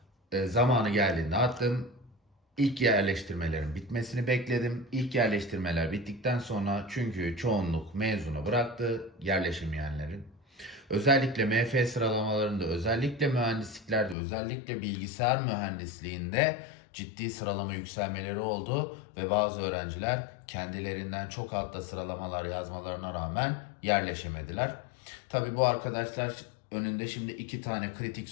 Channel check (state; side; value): drops out; right; at 14.2 s